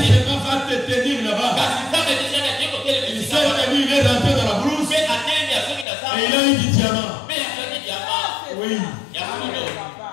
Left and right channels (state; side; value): drops out; right; at 5.9 s